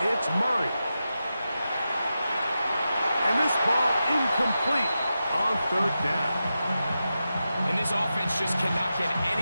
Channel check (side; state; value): both; inverted; correlation -0.90